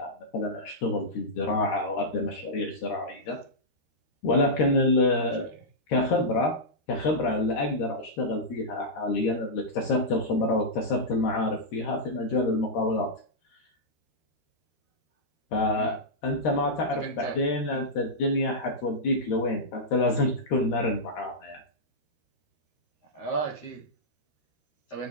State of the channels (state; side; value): late; right; 13 ms